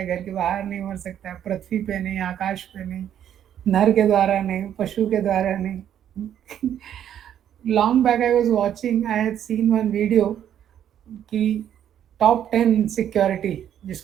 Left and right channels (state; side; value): quieter; left; 10.1 dB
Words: घर के बाहर नहीं मर सकता है, पृथ्वी पे नहीं, आकाश पे नहीं, नर के द्वारा नहीं, पशु के द्वारा नहीं। Long back I was watching, I had seen one video कि टॉप 10 सिक्योरिटी